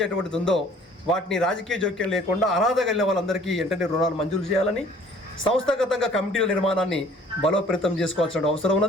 ఉందో వాటిని రాజకీయ జోక్యం లేకుండా అర్హత కలిగిన వాళ్ళందరికీ వెంటనే రుణాలు మంజూరు చేయాలని, సంస్థాగతంగా కమిటీల నిర్మాణాన్ని బలోపేతం చేసుకోవాల్సిన అవసరం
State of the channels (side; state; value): both; normal; correlation 0.54